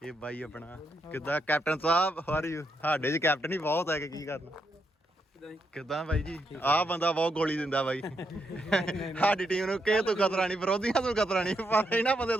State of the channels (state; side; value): normal; both; correlation 0.80